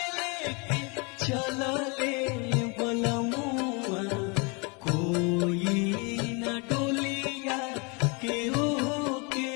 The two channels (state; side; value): quieter; right; 31.2 dB